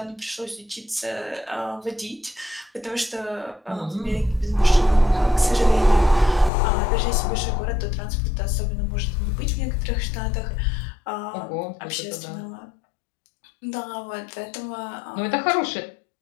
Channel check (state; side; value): drops out; right; at 6.5 s